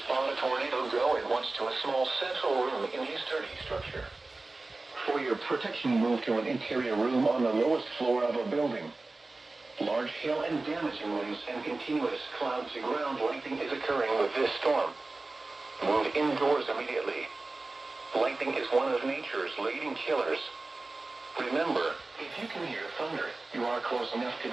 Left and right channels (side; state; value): left; quieter; 3.3 dB